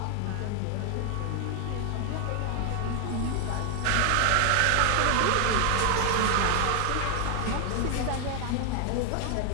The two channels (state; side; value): different; both; correlation 0.00